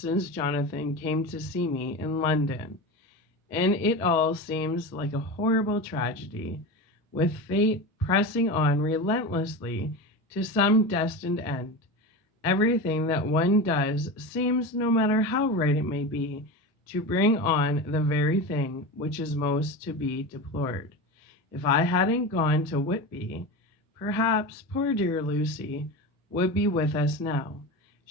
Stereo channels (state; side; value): normal; both; correlation 0.25